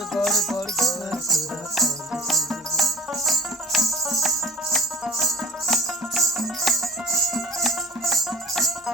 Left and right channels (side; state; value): both; normal; correlation 0.43